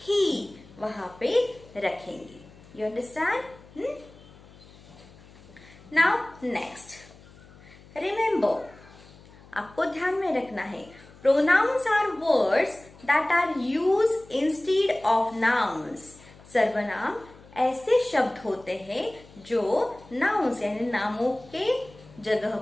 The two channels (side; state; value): left; noise; hum, 23 dB below the sound